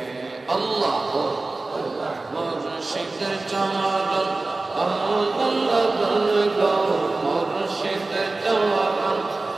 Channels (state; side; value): quieter; left; 3.3 dB